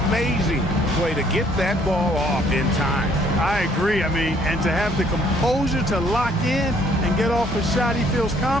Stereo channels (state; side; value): normal; both; correlation 0.63